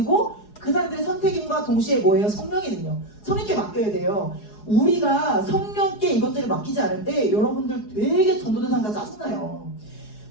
그 사람들의 선택임과 동시에 뭐예요? 성령의 능력. 성령께 맡겨야 돼요. 우리가 성령께 이것들을 맡기지 않을 때 여러분들 되게 전도대상자 짜증나요.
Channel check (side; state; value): right; late; 4.8 ms